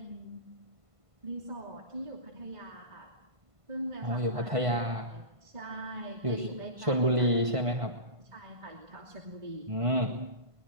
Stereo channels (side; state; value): left; late; 1.5 ms